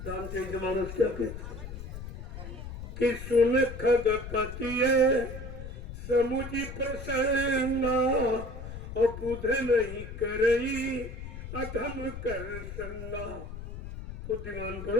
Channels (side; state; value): left; noise; rumble, 10 dB below the sound